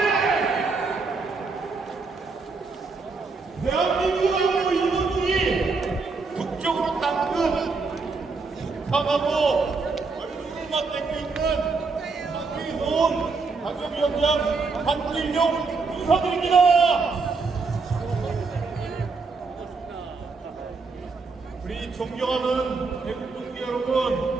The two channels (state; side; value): quieter; left; 4.3 dB